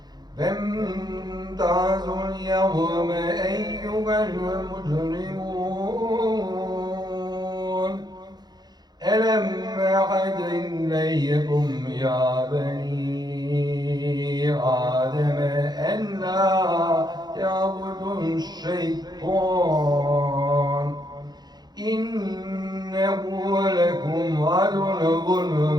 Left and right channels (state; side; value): late; left; 0.20 ms